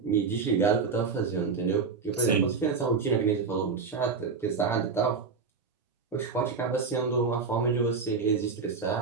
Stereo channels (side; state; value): left; quieter; 5.1 dB